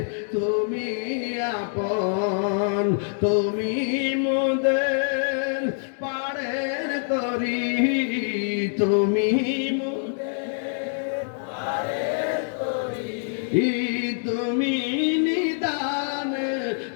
তুমি আপন। তুমি মোদের পাড়ের তরি, তুমি মোদের পাড়ের তরি, তুমি নিদান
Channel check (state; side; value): silent; right; 62 dB below the other